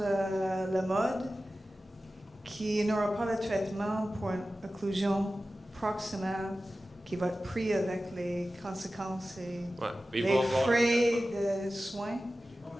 mode, qui n'aura pas le traitement pour une occlusion proximale qui va être pris avec les conséquences et les frais de soins.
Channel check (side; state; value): both; normal; correlation 0.95